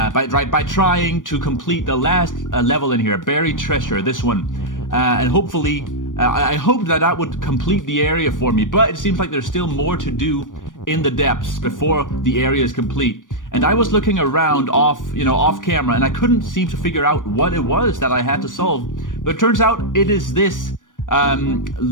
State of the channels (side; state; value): right; late; 0.88 ms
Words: trying to complete the last level in here, Buried Treasure, this one. And hopefully, I hoped that would complete the area for me, but it seems like there's still more to do in the depths before the area is complete. And I was looking around off camera, and I couldn't seem to figure out what it was that I had to solve. But it turns out it is this